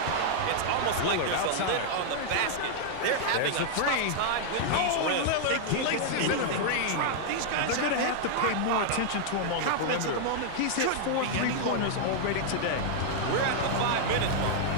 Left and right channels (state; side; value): different; both; correlation -0.01